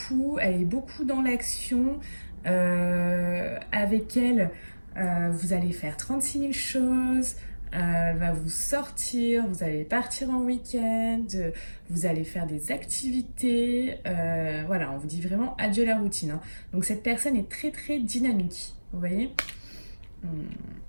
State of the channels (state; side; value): inverted; both; correlation -1.00